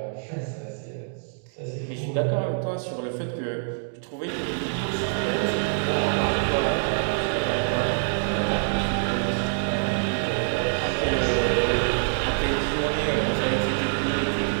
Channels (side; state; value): left; silent; digital silence